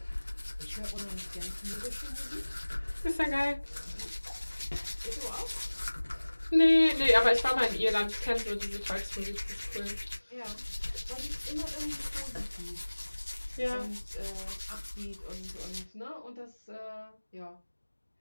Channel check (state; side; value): inverted; both; correlation -1.00